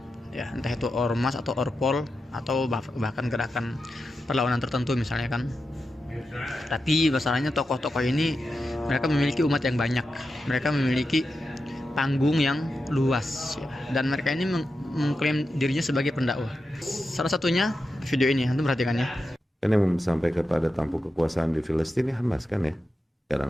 Ya, entah itu ormas atau orpol atau bahkan gerakan perlawanan tertentu misalnya kan. Tapi masalahnya tokoh-tokoh ini mereka memiliki umat yang banyak, mereka memiliki panggung yang luas ya. Dan mereka ini mengklaim dirinya sebagai pendakwah. Salah satunya video ini, antum perhatikan ya. Kan yang sampai kepada tampuk kekuasaan di Filistin ini Hamas kan ya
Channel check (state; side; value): normal; both; correlation 0.89